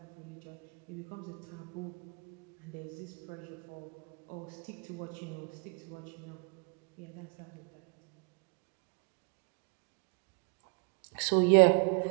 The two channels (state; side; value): quieter; left; 34.3 dB